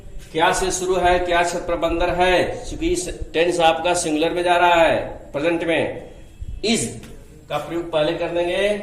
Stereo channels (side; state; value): both; identical; correlation 1.00